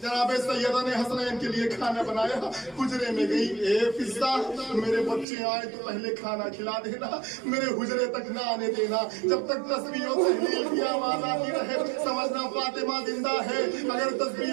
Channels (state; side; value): drops out; left; at 5.2 s